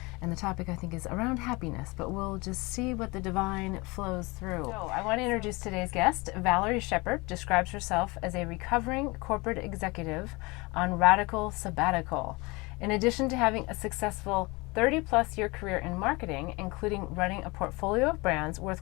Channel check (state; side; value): quieter; right; 25.2 dB